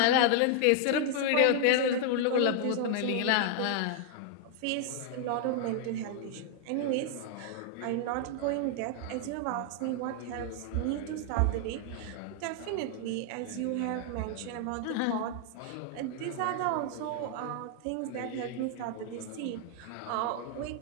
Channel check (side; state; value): both; different; correlation 0.00